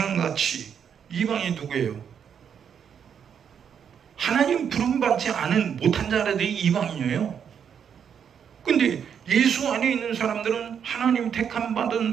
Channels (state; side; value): quieter; left; 7.8 dB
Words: 이방인이 누구예요? 하나님 부름받지 않은 못한 자들이 이방인이에요. 근데 예수 안에 있는 사람들은 하나님 택함 받은